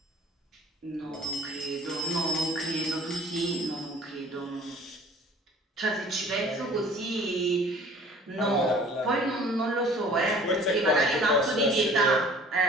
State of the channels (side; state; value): both; normal; correlation 0.50